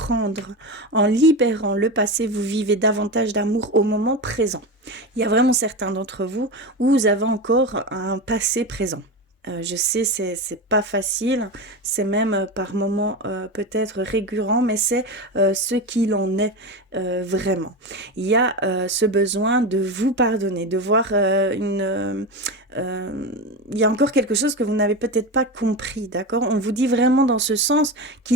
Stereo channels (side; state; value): both; normal; correlation 0.20